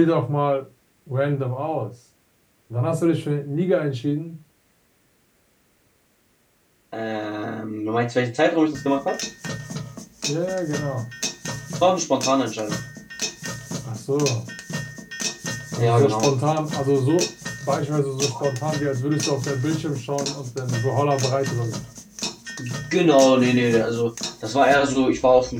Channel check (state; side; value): identical; both; correlation 1.00